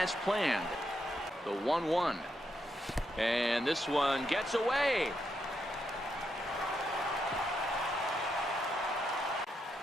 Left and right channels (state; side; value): normal; both; correlation 0.81